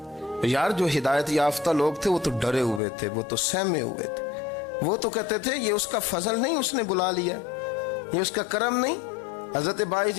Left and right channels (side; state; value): right; drops out; at 2.8 s